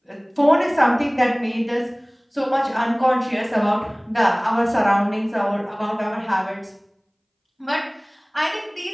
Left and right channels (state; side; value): identical; both; correlation 1.00